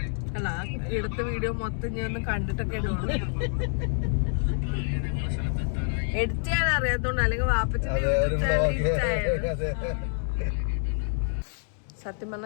അല്ല, എടുത്ത വീഡിയോ മൊത്തം ഞാൻ ഒന്ന് കണ്ടിട്ടൊക്കെ ഇടുവാണ്. എഡിറ്റ് ചെയ്യാൻ അറിയാത്തോണ്ട്, അല്ലെങ്കിൽ വാപ്പച്ചിന്റെ യൂട്യൂബ് ചാനൽ ഇഷ്ടമായിരുന്നു. സത്യം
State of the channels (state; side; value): silent; right; 60 dB below the other